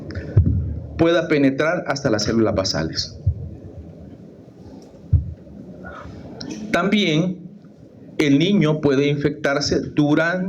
pueda penetrar hasta las células basales. También el niño puede infectarse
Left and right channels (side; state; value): both; identical; correlation 1.00